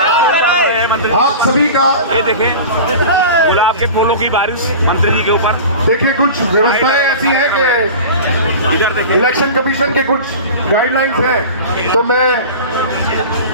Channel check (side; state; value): both; inverted; correlation -0.34